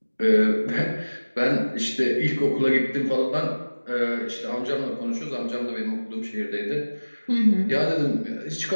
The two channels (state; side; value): inverted; both; correlation -1.00